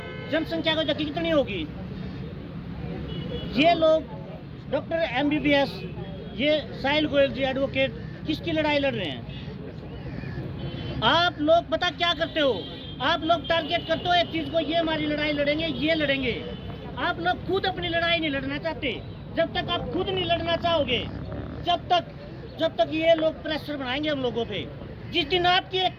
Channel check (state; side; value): identical; both; correlation 1.00